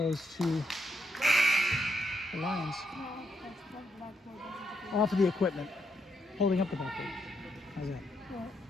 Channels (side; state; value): both; normal; correlation 0.78